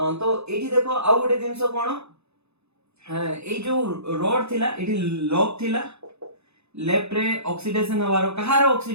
एठी देखो आउ गोटे जिंस कोन ए जो रॉड थिला एठी लॉक थिला लेफ्ट रे ऑक्सीडेशन हवारो कहारो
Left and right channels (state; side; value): late; left; 0.80 ms